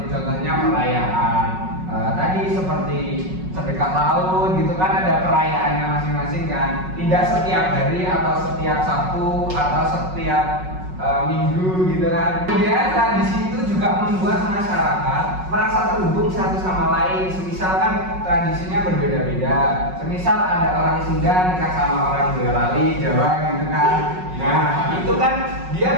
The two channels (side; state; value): left; late; 5.4 ms